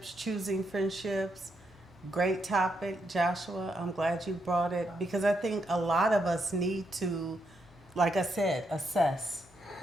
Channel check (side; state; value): both; normal; correlation 0.80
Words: choosing friendships. Great topic, Joshua. I'm glad you brought it because I think a lot of us need to, like I said, assess